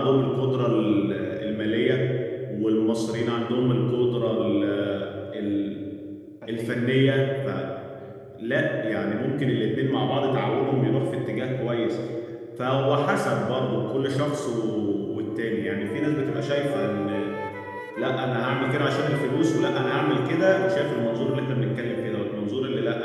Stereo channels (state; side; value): identical; both; correlation 1.00